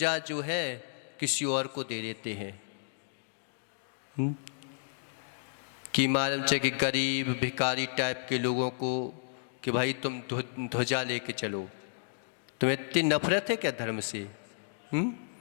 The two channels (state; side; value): silent; right; digital silence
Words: जो है किसी और को दे देते हैं, कि मालूम चाहिए कि गरीब भिखारी टाइप के लोगों को, कि भाई तुम ध्वजा लेके चलो। तुम्हें इतनी नफरत है क्या धर्म से,